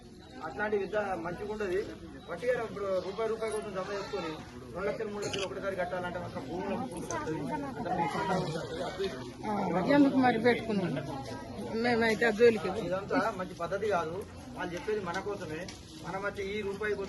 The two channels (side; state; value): both; identical; correlation 1.00